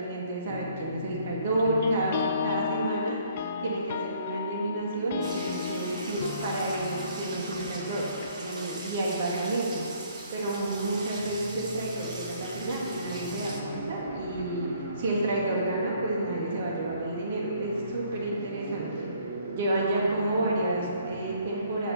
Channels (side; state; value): both; inverted; correlation -0.62